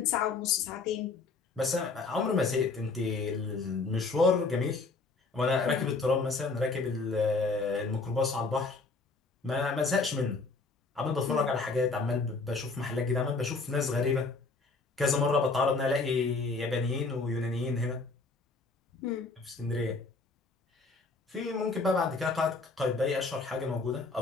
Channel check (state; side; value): quieter; right; 3.9 dB